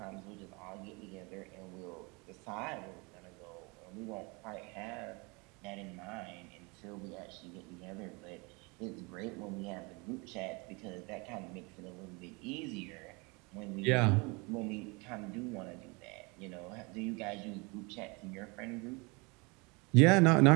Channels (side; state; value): left; quieter; 28.5 dB